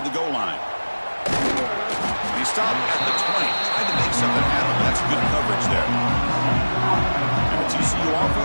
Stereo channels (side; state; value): both; inverted; correlation -1.00